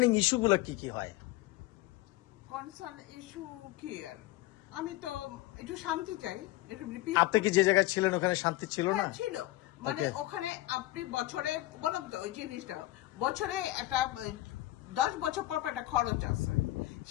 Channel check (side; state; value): right; quieter; 17.3 dB